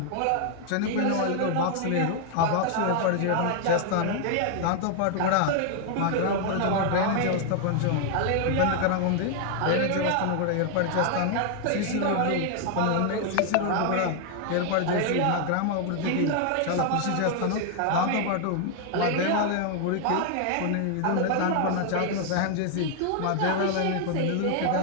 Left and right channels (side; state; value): both; different; correlation 0.00